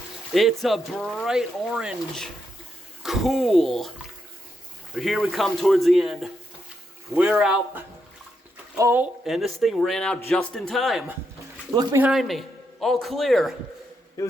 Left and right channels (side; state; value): both; normal; correlation 0.81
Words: It's a bright orange. Cool. But here we come towards the end. We're out. Oh, and this thing ran out just in time. Look behind me. All clear. It